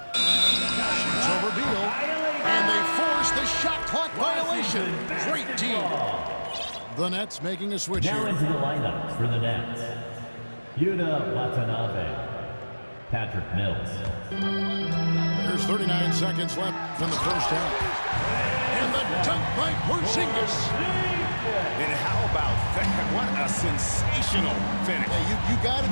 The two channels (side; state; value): both; inverted; correlation -1.00